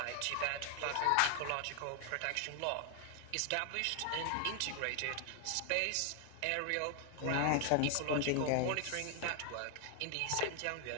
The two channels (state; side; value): different; both; correlation 0.00